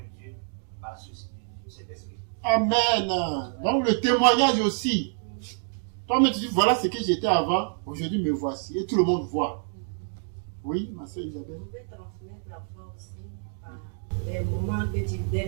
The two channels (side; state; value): left; silent; 60 dB below the other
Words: de Dieu, par ce cet esprit. Amen. Donc le témoignage aussi. Toi-même, tu dis, voilà ce que j'étais avant, aujourd'hui me voici. Et tout le monde voit. Oui, ma soeur Isabelle. On peut transmettre la foi aussi par les moments que des